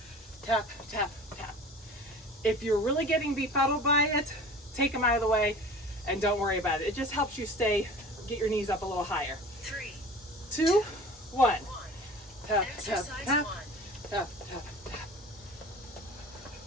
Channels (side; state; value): both; normal; correlation 0.41